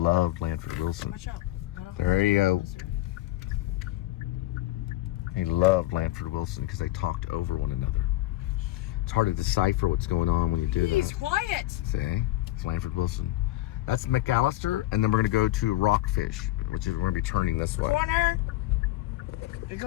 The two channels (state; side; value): quieter; right; 16.3 dB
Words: Lanford Wilson. Watch out. There you go. He loved Lanford Wilson because they talked over one another. It's hard to decipher what's going on when you do that. He's quiet. See? It's Lanford Wilson. That's McAllister, and then we're going to go to Rockfish, which is we're going to be turning this way. Corner. You're